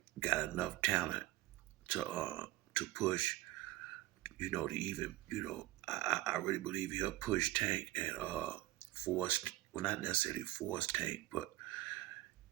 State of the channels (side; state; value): left; quieter; 17.2 dB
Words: got enough talent to push. To even I really believe he'll push Tank and force, well, not necessarily force Tank, but